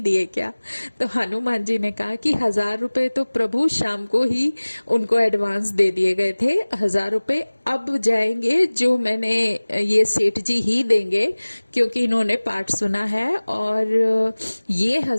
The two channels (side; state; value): both; inverted; correlation -1.00